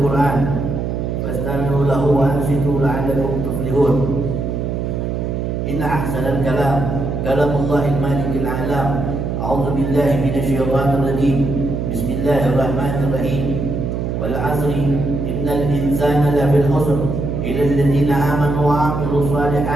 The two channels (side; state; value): right; noise; hum, 2 dB below the sound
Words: Qur'an fastami'u lahu wa ansitu la'allakum tuflihun. إن أحسن الكلام كلام الله المالك الأعلام. أعوذ بالله من الشيطان الرجيم. بسم الله الرحمن الرحيم. والعصر إن الإنسان لفي الخسر إلا الذين آمنوا وعملوا